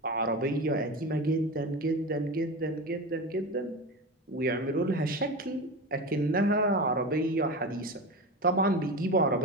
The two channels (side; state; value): both; normal; correlation 0.25